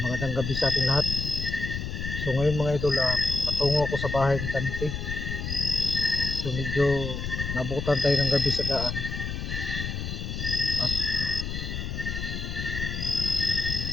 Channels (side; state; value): left; noise; rumble, 4 dB below the sound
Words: gabi sa ating lahat. So ngayon mga idol, patungo ako sa bahay ni Dante. So medyo nabutan tayo ng gabi sa daan. At